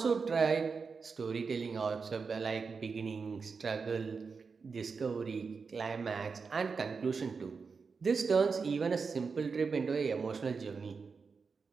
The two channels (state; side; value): quieter; left; 5.1 dB